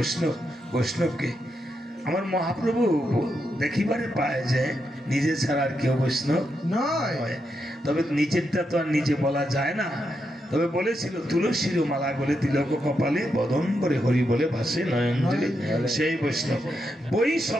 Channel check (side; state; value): both; normal; correlation 0.83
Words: বৈষ্ণবকে। আমার মহাপ্রভু দেখিবারে পায় যে নিজে ছাড়া আর কেউ বৈষ্ণব নয়। তবে নিজেরটা তো আর নিজে বলা যায় না। তবে বলেছিল তুলসীর মালা বলে তিলক কপালে বদম্বরে হরি বলে ভাসে নয়নজলি, সেই বৈষ্ণব। বই